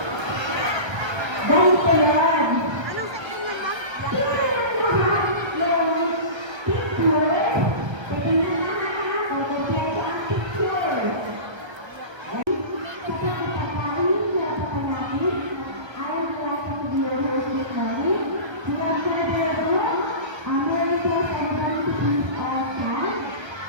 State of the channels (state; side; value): late; left; 1.3 ms